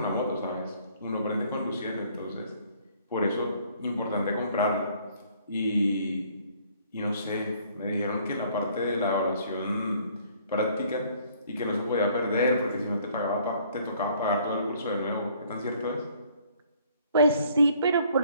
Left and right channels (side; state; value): both; inverted; correlation -0.60